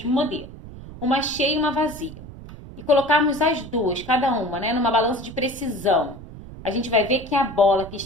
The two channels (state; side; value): noise; right; rumble, 15 dB below the sound